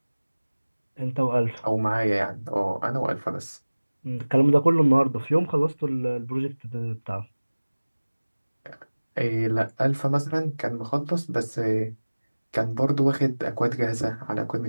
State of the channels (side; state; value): both; inverted; correlation -1.00